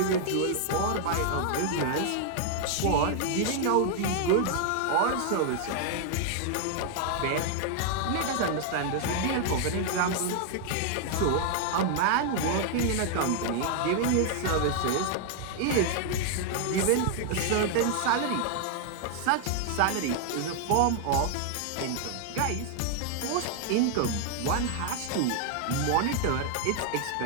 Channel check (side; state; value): both; different; correlation 0.00